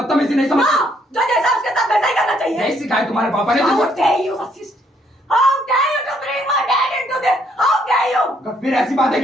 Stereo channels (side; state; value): both; normal; correlation 0.69